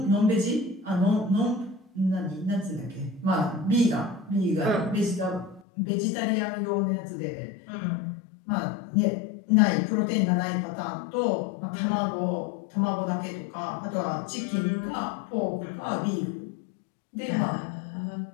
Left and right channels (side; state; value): right; drops out; at 5.7 s